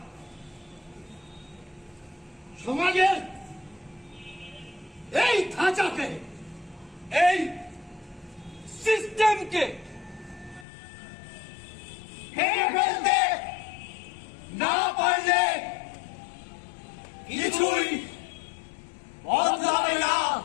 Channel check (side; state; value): right; drops out; at 10.7 s